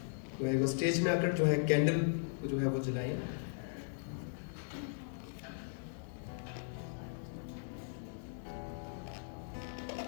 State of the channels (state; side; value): silent; right; digital silence